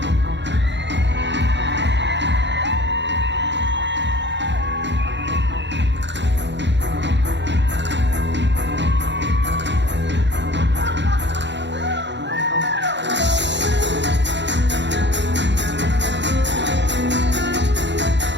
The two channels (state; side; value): late; left; 0.52 ms